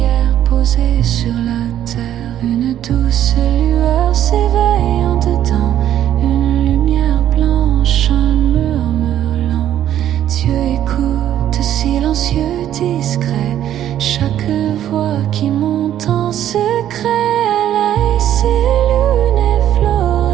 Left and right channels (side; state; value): left; quieter; 11.4 dB